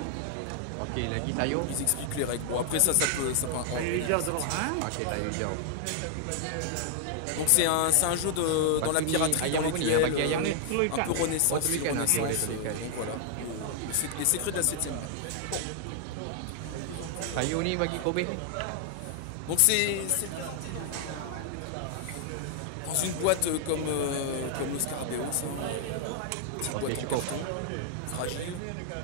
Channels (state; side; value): different; both; correlation 0.00